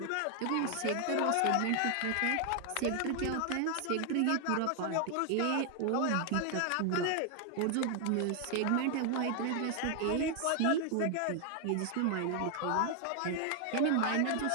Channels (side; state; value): both; different; correlation 0.00